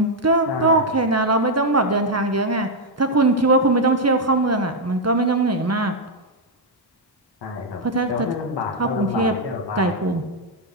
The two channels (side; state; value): both; normal; correlation 0.00